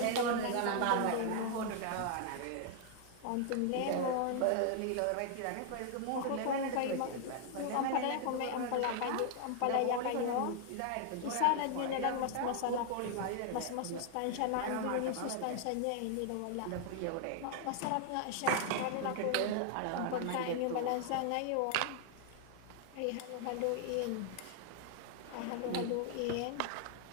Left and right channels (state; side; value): different; both; correlation 0.00